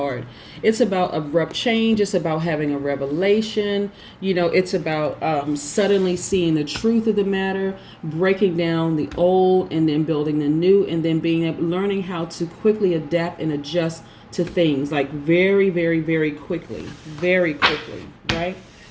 It's about abrupt change. It's about having a revelation. It's about suddenly seeing the truth of the matter, breaking down the old and then building the new, and then learning how to quickly adapt and adjust to things, like very quickly, right?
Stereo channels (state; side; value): identical; both; correlation 1.00